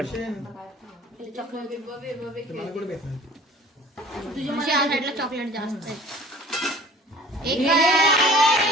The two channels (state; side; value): normal; both; correlation 0.47